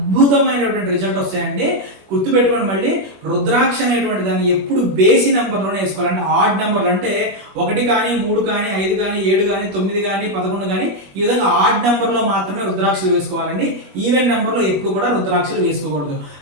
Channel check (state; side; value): late; left; 21 ms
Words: రిజల్ట్ వస్తాయండి. గుర్తుపెట్టుకోండి, మళ్ళీ రుద్రాక్ష అనేటువంటి దాన్ని ఎప్పుడు బేసి నెంబర్లోనే వేసుకోవాలంటే ఆడ్ నెంబర్లు, అంటే 1 కానీ 3 కానీ 5 కానీ 7 కానీ 9 కానీ 11 కానీ ఈ విధంగా ఆడ్ నెంబర్లో మాత్రమే రుద్రాక్షలు వేసుకోవాలండి. ఈవెన్ నెంబర్లో ఎప్పుడు కూడా రుద్రాక్షలు వేసుకోకూడదు.